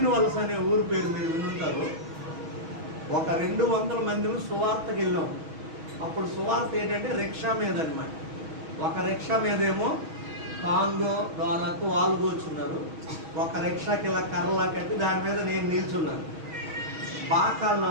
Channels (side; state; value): left; late; 6.3 ms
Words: వలస అనే ఊరు పేరు మీరు వినుంటారు. ఒక 200 మందిని సువార్తకి వెళ్ళాం. అప్పుడు సువార్త ఏంటంటే రిక్షా మీద అనమాట. ఒక రిక్షా మీదేమో కాంగో డోలకు వాళ్ళు కూర్చున్నారు, ఒక రిక్షాకి ఇలా కర్రలా కట్టి దాని మీద నేను నిల్చున్నాను. బాకాలు